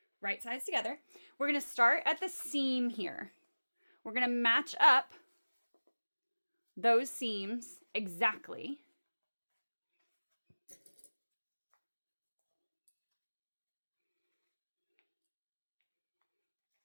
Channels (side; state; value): both; inverted; correlation -1.00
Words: right sides together. We're gonna start at the seam here. We're gonna match up those seams exactly.